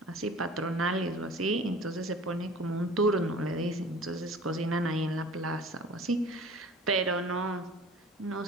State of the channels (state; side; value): normal; both; correlation 0.44